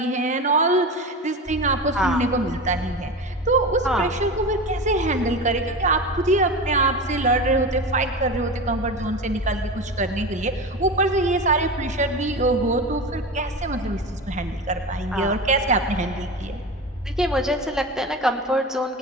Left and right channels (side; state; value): both; normal; correlation 0.27